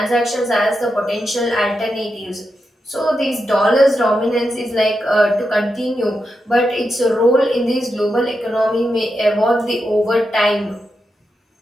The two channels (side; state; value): both; normal; correlation 0.87